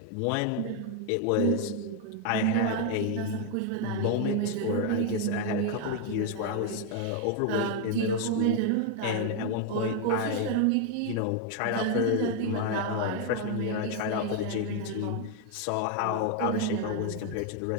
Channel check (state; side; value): different; both; correlation 0.00